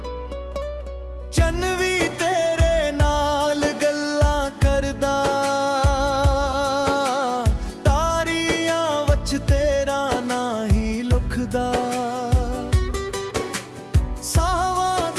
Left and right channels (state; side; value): identical; both; correlation 1.00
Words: चन भी तेरे नाल गल्लां करदा, तारियां वच तेरा ना ही लुखदा। सावां